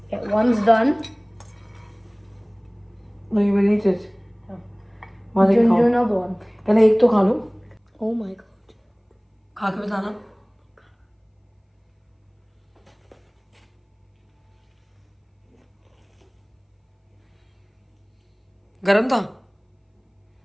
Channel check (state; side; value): identical; both; correlation 1.00